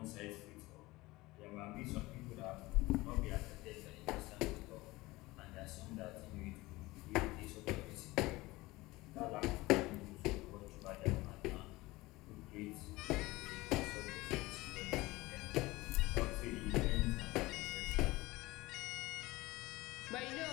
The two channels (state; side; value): quieter; right; 20.3 dB